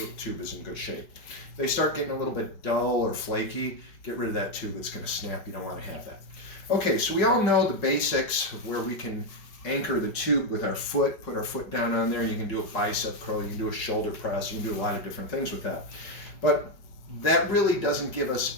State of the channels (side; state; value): right; late; 5.1 ms